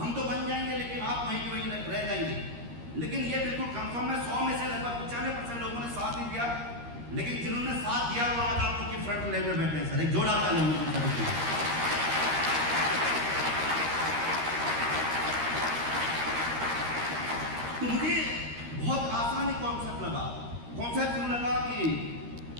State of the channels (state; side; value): late; left; 13 ms